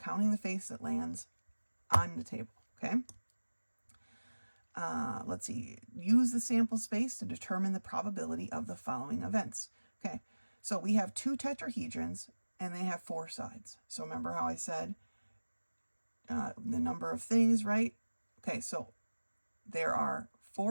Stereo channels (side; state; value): both; inverted; correlation -1.00